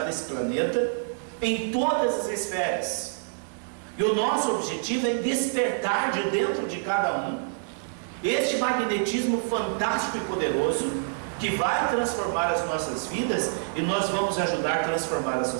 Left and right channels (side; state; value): left; silent; digital silence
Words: esse planeta em todas as esferas. E o nosso objetivo é despertar de dentro de cada um este magnetismo fantástico e poderoso que vai transformar as nossas vidas, e nós vamos ajudar a transformar a